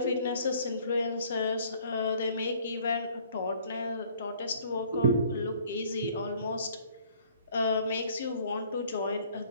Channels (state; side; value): inverted; both; correlation -0.58